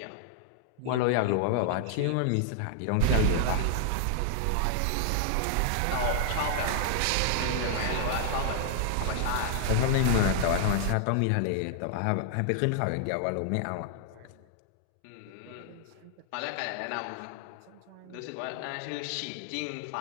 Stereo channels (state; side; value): different; both; correlation -0.01